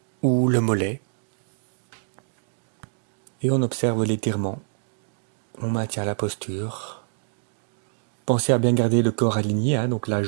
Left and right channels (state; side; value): silent; left; digital silence